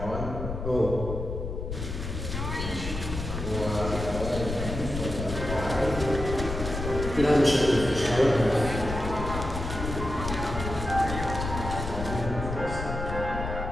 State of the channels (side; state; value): left; noise; rumble, 5 dB below the sound